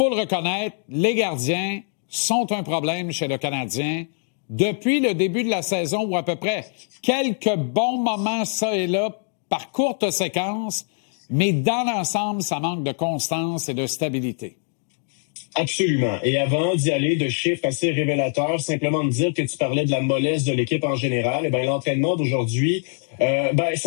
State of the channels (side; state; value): right; silent; 58 dB below the other